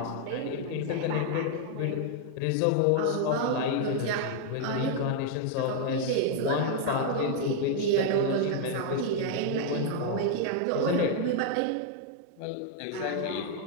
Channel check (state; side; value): different; both; correlation 0.00